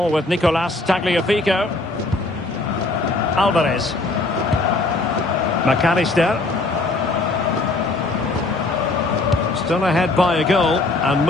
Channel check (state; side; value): quieter; right; 3.1 dB